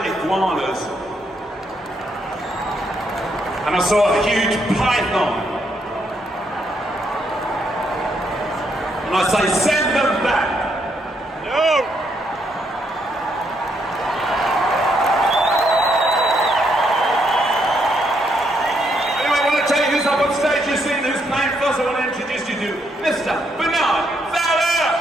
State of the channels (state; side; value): normal; both; correlation 0.75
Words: iguanas. And I saw a huge python. And I say, send them back. No! Anyway, I want to tell you who's up on stage. You've seen who's playing first. I want to introduce you to Mr. Bernard Fowler.